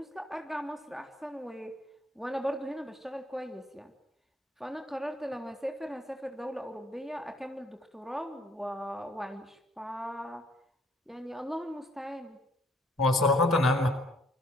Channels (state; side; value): normal; both; correlation 0.64